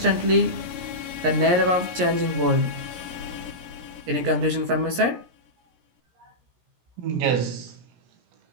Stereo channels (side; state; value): left; late; 17 ms